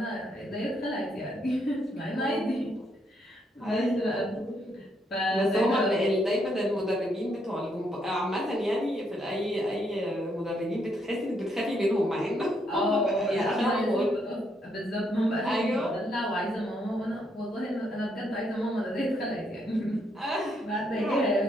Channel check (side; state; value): both; normal; correlation 0.75